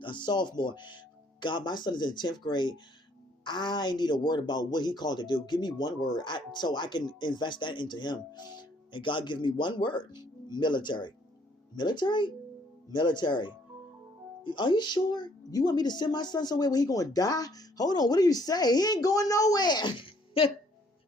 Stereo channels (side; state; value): both; normal; correlation 0.64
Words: sophomore. God, my son is in 10th grade. I need a word about what he called to do. Give me one word so I can invest that into him. And God give me one word. Military. Military? Military. Are you sure? You want me to send my son somewhere where he going to die? Hold on. What do you say? He ain't going nowhere.